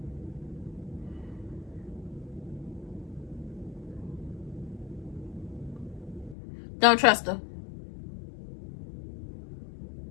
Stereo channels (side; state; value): right; drops out; at 6.4 s